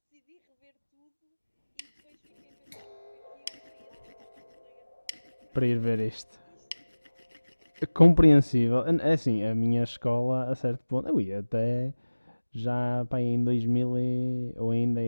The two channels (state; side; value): inverted; both; correlation -1.00